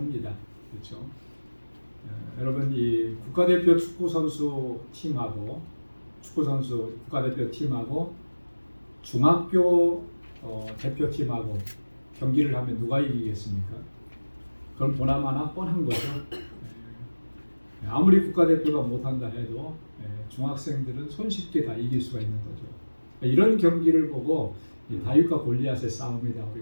그렇죠? 여러분, 이 국가대표 축구 선수 팀하고 국가대표 팀하고 중학교 대표팀하고 경기를 하면 누가 이기겠습니까? 그럼 보나마나 뻔한 거죠. 아무리 국가대표가 못한다 해도 중학생들은 손쉽게 다 이길 수가 있는 거죠. 이런 경기를 보고 다윗과 골리앗의 싸움이다,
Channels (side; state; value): both; inverted; correlation -1.00